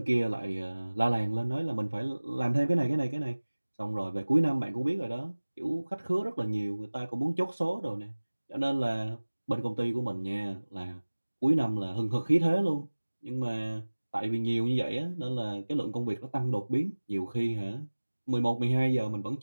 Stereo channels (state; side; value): inverted; both; correlation -1.00